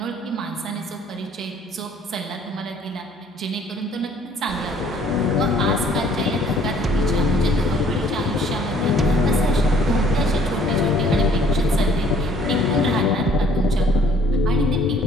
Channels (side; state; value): both; normal; correlation 0.59